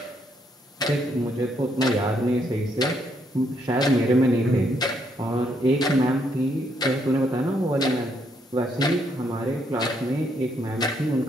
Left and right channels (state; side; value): normal; both; correlation 0.73